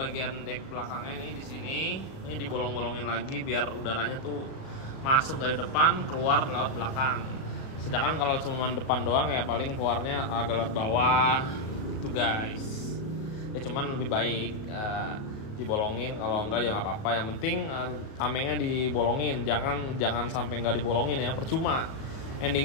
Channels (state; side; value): late; right; 37 ms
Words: dek belakangnya nih di sini. Ini dibolong-bolongin lagi biar udaranya tuh masuk dari depan keluar lewat belakang. Sedangkan kalau cuma depan doang ya paling keluarnya agak lewat bawah gitu guys. Ya cuman lebih baik dibolongin, kalau enggak ya nggak apa-apa. Yang penting tamengnya dibolongin, jangan sampai nggak dibolongin ya, percuma.